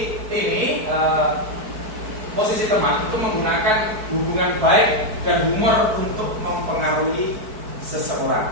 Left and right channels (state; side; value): late; left; 4.6 ms